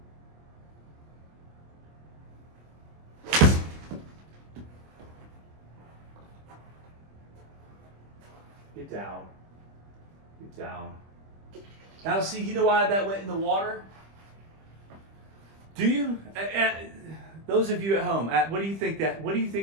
Get down. Get down. Now see, you know why that went in the water? Do you? Those of you at home, what do you think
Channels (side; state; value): left; late; 25 ms